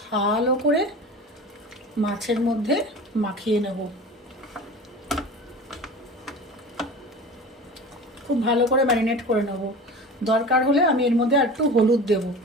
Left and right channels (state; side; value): normal; both; correlation 0.36